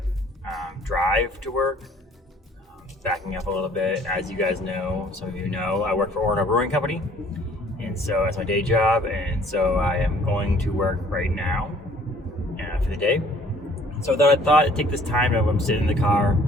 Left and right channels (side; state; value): both; normal; correlation 0.57